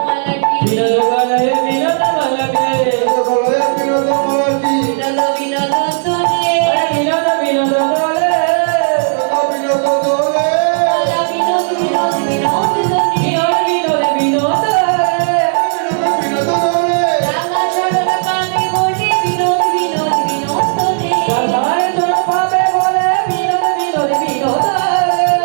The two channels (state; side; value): silent; left; digital silence